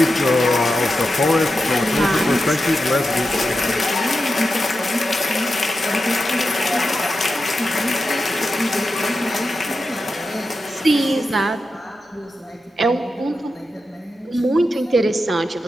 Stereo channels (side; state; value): both; normal; correlation 0.90